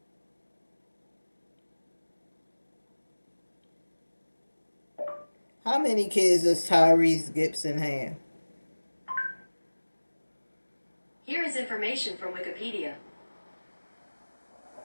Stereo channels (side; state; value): both; inverted; correlation -1.00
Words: How many kids does Tyrese Gibson have? Here is information from Wikipedia.